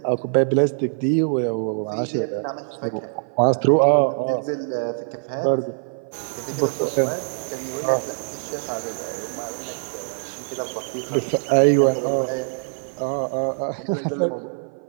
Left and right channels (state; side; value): silent; left; 55 dB below the other